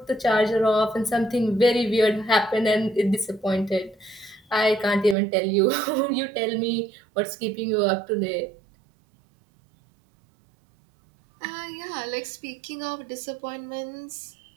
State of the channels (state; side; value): drops out; left; at 5.2 s